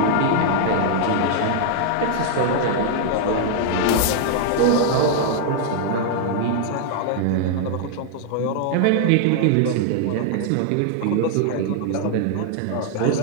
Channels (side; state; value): both; different; correlation 0.00